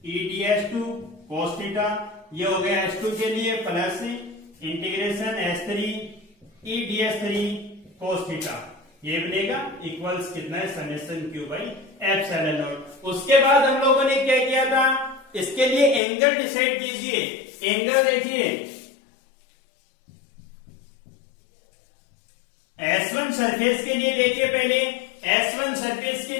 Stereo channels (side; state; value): right; drops out; at 16.0 s